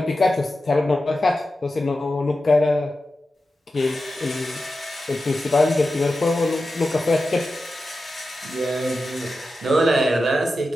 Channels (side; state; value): both; normal; correlation 0.92